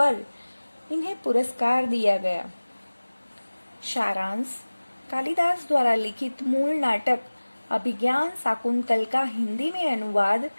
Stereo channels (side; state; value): both; inverted; correlation -1.00